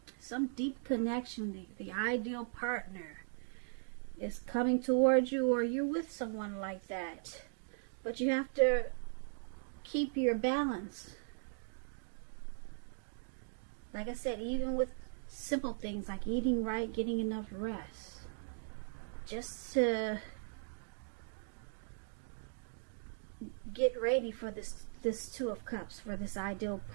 some deep connection. The ideal partner is coming towards you, or you're with someone like that. But you have to keep your balance. Like I said, even with simple things like eating right, getting enough rest, just to get ready for this Two of Cups, for this ideal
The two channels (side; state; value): left; silent; digital silence